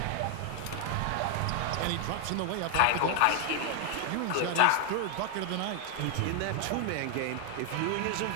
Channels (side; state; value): both; different; correlation 0.00